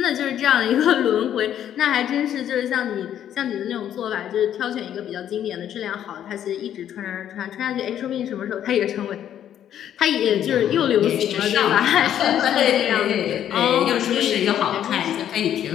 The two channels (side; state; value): right; quieter; 10.4 dB